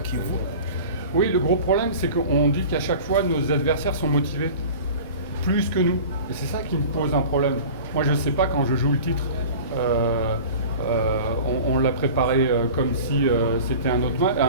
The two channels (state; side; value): inverted; both; correlation -0.39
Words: Kivu. Oui, le gros problème, c'est qu'on dit qu'à chaque fois, nos adversaires sont motivés, plus que nous. Et c'est ça qui me pose un problème. Moi, je ne sais pas quand je joue le titre. On l'a préparé comme si c'était un autre